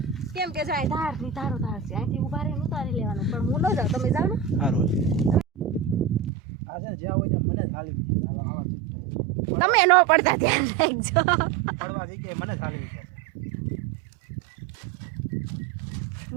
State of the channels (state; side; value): drops out; left; at 6.3 s